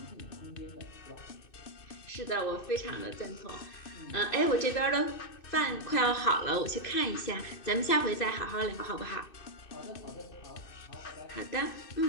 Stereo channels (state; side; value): late; right; 2.6 ms